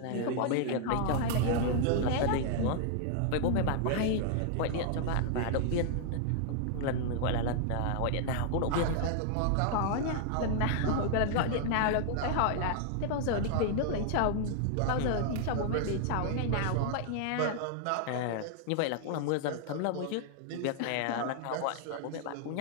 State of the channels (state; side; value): different; both; correlation 0.00